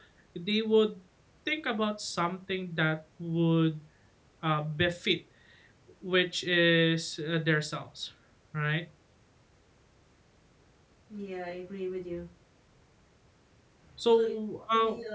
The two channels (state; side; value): identical; both; correlation 1.00